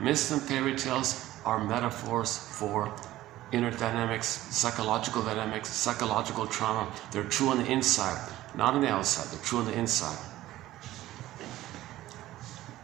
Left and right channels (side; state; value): left; quieter; 15.3 dB